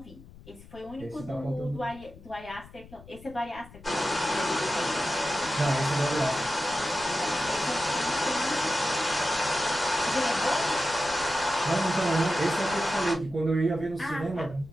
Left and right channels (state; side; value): noise; left; rumble, 20 dB below the sound